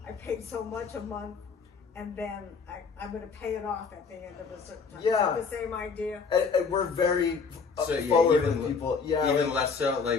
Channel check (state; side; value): quieter; right; 5.3 dB